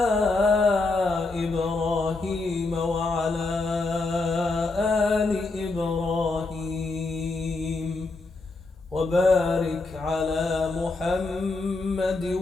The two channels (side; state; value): right; quieter; 3.4 dB